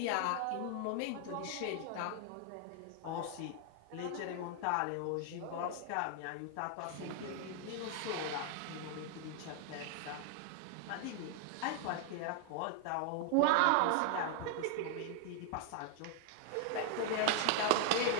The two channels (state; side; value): different; both; correlation 0.00